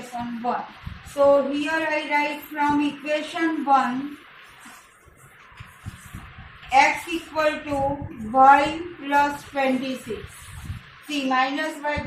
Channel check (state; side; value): identical; both; correlation 1.00